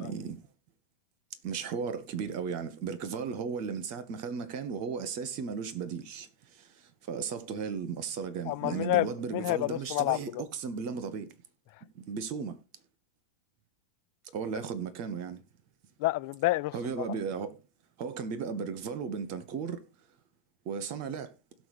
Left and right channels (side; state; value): left; late; 1.8 ms